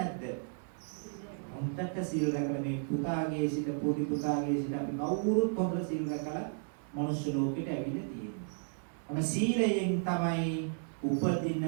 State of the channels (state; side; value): silent; left; digital silence